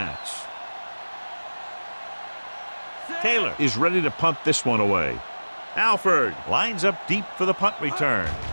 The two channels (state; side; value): inverted; both; correlation -1.00